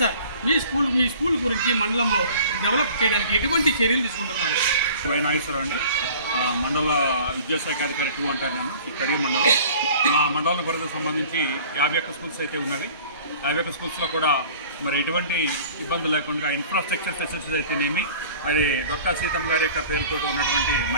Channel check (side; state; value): both; inverted; correlation -0.47